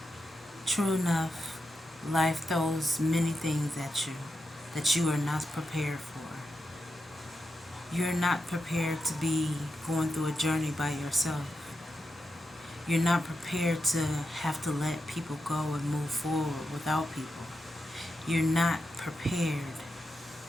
True enough, life throws many things at you that you are not prepared for. You're not prepared to be going through a journey by yourself. You're not prepared to have to let people go and move forward without people. You're not prepared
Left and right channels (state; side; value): normal; both; correlation 0.88